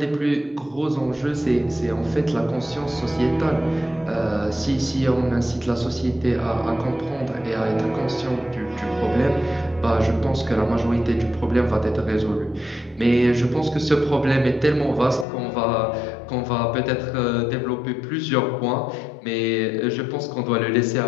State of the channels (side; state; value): right; drops out; at 15.2 s